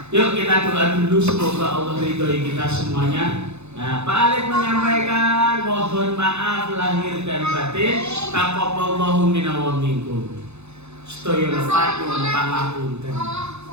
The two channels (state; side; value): late; left; 0.81 ms